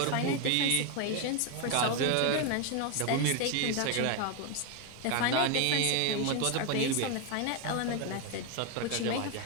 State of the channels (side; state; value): both; different; correlation 0.01